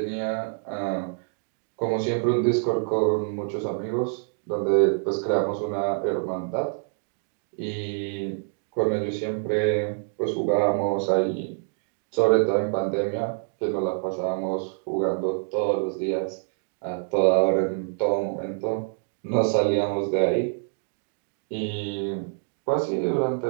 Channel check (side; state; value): left; silent; digital silence